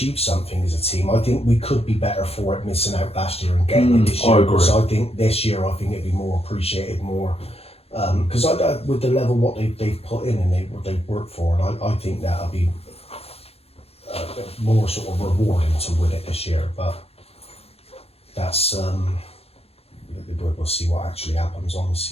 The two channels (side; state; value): right; late; 0.29 ms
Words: something as a team, I think we could be better for it missing out last year and getting it this year. I agree. So I think this year, it'd be more appreciated, more because with the level what they've put in and what they've worked for, and I think that'll be more sort of rewarding to win it this year. But that's we'll see what actually happens on the